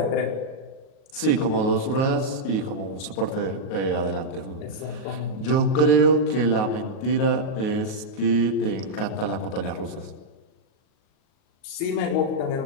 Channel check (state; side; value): late; right; 37 ms